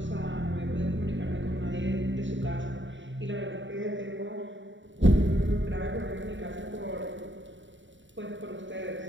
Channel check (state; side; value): late; left; 0.54 ms